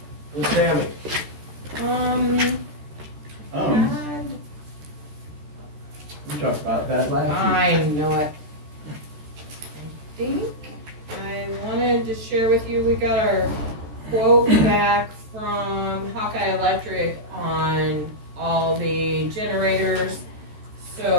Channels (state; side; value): late; left; 14 ms